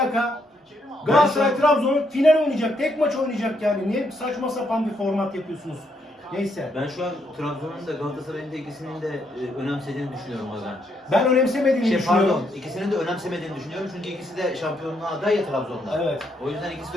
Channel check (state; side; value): normal; both; correlation 0.75